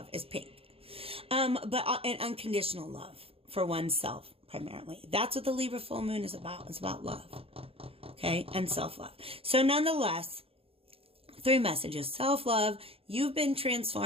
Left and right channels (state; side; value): late; left; 0.27 ms